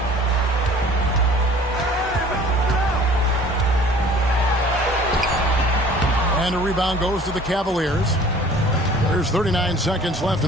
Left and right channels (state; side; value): normal; both; correlation 0.50